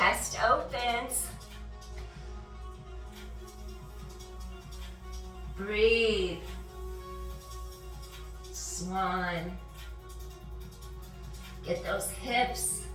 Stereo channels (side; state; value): both; identical; correlation 1.00